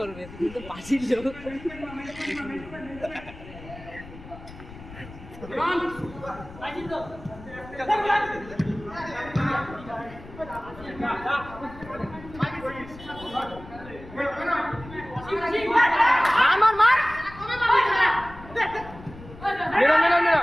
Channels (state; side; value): noise; left; rumble, 16 dB below the sound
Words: বলবে কিন্তু পাঁচিল লোক। মার মার মেরা মেরা মেরা